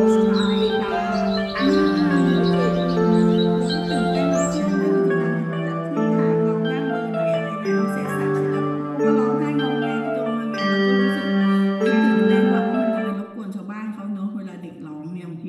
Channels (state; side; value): identical; both; correlation 1.00